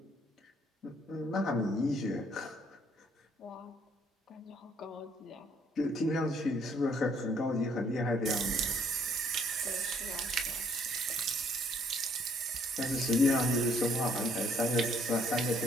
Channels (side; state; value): both; normal; correlation 0.65